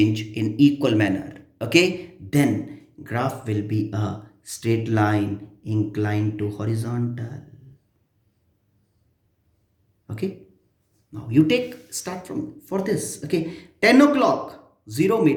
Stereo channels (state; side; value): identical; both; correlation 1.00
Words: in equal manner, okay, then graph will be a straight line inclined to horizontal. Okay, now you take start from for this, okay, 10 o'clock 0